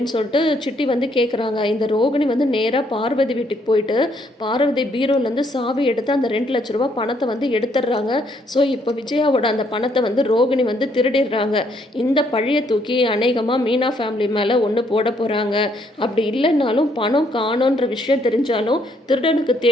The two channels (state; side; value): normal; both; correlation 0.70